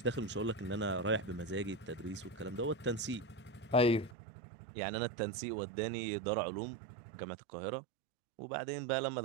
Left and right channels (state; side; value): drops out; left; at 4.2 s